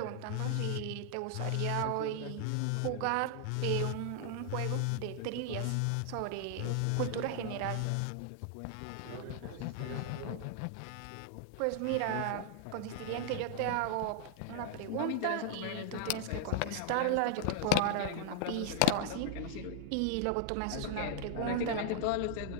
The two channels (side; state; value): both; different; correlation 0.00